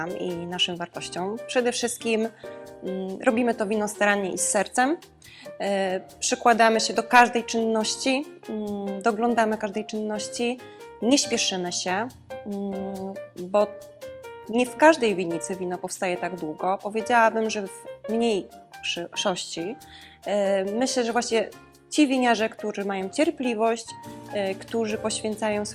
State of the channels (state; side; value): identical; both; correlation 1.00